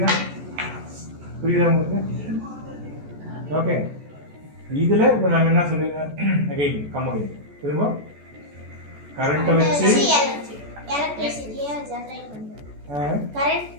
உங்களுக்கு? ஓகே, இதில் இப்போ நம்ம என்ன சொல்லிடுறோம்? அகைன் கம்பெனி திரும்ப கரண்ட்டை வச்சு எலக்ட்ரிசிட்டியை ஜெனரேட் பண்ணுறது.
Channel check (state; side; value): late; left; 14 ms